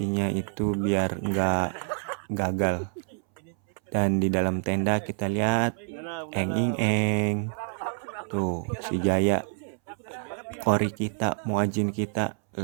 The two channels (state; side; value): silent; left; 60 dB below the other